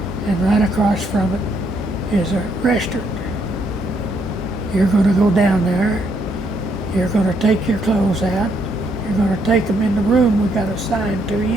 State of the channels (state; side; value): normal; both; correlation 0.73